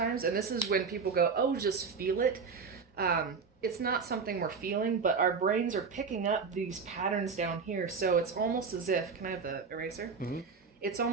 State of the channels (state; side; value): quieter; left; 5.3 dB